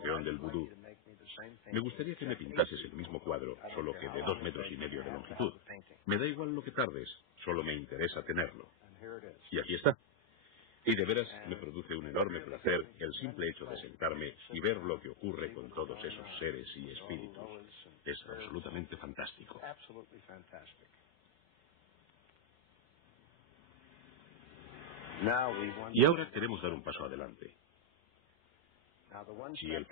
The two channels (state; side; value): late; left; 5.3 ms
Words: del Vudú. Me gustaría que me pintases el mismo cuadro, solo que de 2,5 metros de longitud. Me da igual lo que tardes, solo me interesa tenerlo. Y aquí está. Y de veras me produce un enorme placer el simple hecho de sentarme y ver lo que ocurre con todos esos seres y espíritus. Es absolutamente fantástico. Y ahora queremos dar un paso adelante. Y el